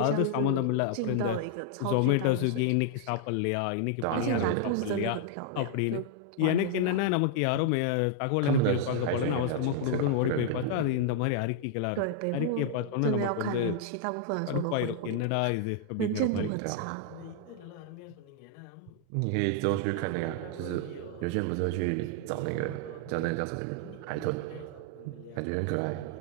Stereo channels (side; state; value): both; different; correlation -0.01